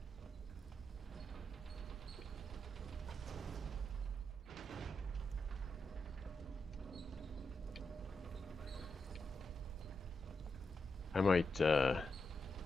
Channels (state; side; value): normal; both; correlation 0.86